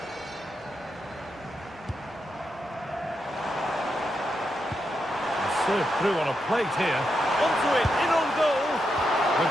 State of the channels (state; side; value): normal; both; correlation 0.84